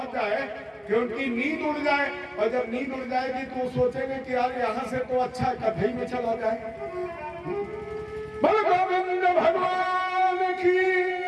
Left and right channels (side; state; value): both; identical; correlation 1.00